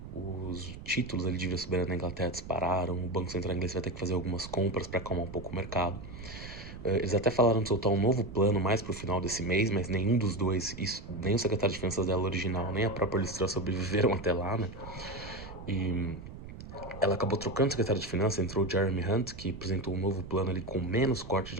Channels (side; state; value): right; noise; rumble, 12 dB below the sound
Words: Os títulos ali de dívida soberana na Inglaterra dispararam, o Banco Central inglês vai ter que fazer algumas compras para acalmar um pouco o mercado. Eles até falaram de soltar um novo plano mais pro final desse mês, mas nenhum dos dois, nem o secretário de Finanças dela original, nem a própria Liz Truss sobreviveram até lá, né? E ela acabou trocando o secretário de Finanças, entrou o Jeremy Hunt, que apresentou um novo plano ali com menos corte